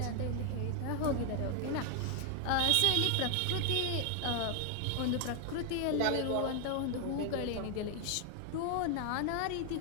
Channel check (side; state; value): both; different; correlation 0.00